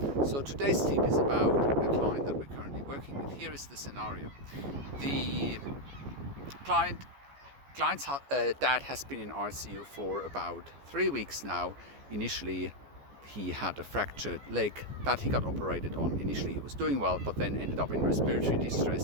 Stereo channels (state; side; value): late; left; 14 ms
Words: So today's tip is about a client that we're currently working with. Here is the scenario. The client's dad has been in ICU for about 3 weeks now. Initially, he had a fractured leg that he got operated on. Initially, he was doing well, but then ended up in respiratory